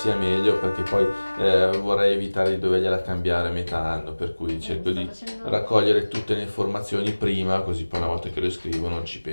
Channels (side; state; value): both; inverted; correlation -1.00